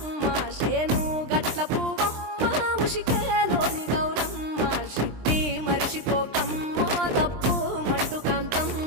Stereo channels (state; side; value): late; left; 23 ms